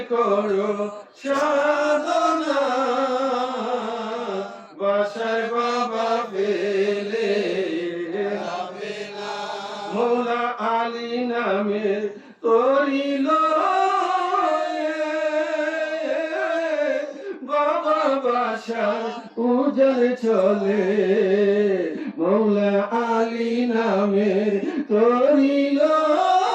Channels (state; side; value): identical; both; correlation 1.00